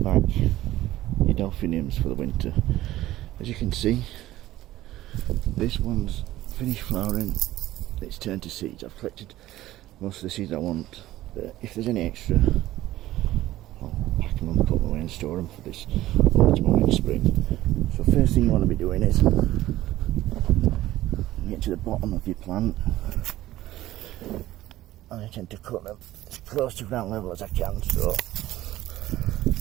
your Delphiniums for the winter. As you can see, this one's finished flowering, it's turned to seeds. I've collected most of the seeds I want, but if there's any extra, I'll pack them and put them away and store them for this autumn or next spring. So first thing you want to be doing is get to the bottom of your plant. And I tend to cut them as close to ground level as I can, so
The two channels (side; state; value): left; quieter; 15.3 dB